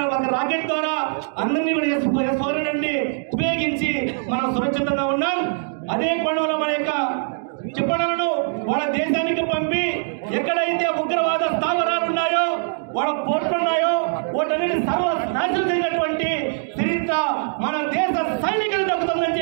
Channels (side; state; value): left; silent; digital silence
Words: ఒక రాకెట్ ద్వారా అందరినీ కూడా S-400 ఉపయోగించి మనం సురక్షితంగా ఉన్నాం. అదే కోణంలో మన యొక్క చెప్పలను వాళ్ళ దేశానికి పంపి ఎక్కడైతే ఉగ్రవాద స్థావరాలు ఉన్నాయో, వాళ్ళ పోర్టులు ఉన్నాయో, వాటన్నిటి సర్వనాశనం చేసినటువంటి చరిత్ర మన దేశ సైనికులు దక్కుతుందని